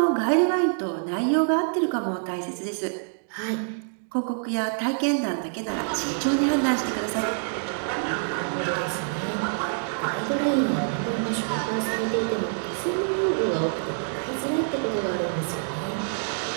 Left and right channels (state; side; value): silent; left; digital silence